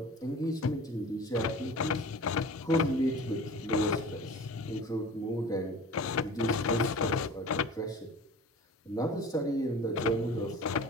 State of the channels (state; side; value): normal; both; correlation 0.40